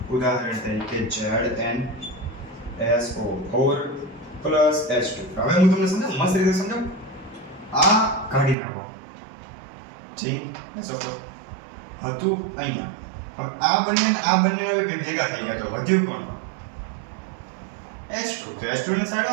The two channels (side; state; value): left; drops out; at 8.6 s